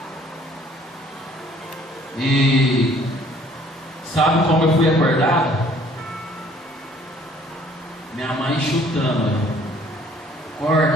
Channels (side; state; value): both; normal; correlation 0.58